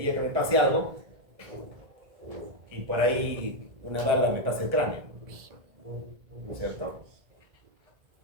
que me pase algo y por ahí una bala me pasa el cráneo, ¿no es cierto?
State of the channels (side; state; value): left; late; 1.4 ms